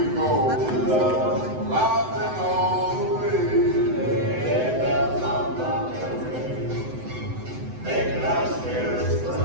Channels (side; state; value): left; late; 7.9 ms